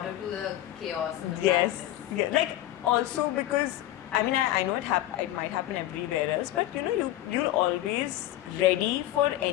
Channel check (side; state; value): right; quieter; 14.4 dB